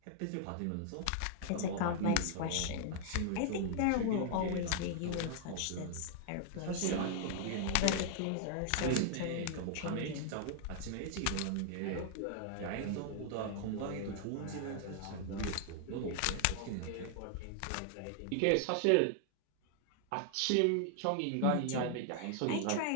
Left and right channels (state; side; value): different; both; correlation 0.00